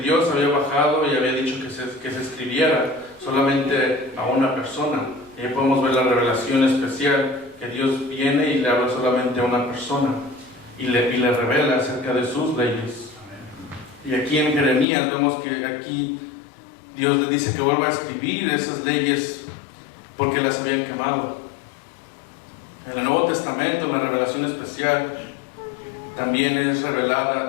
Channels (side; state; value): right; drops out; at 14.9 s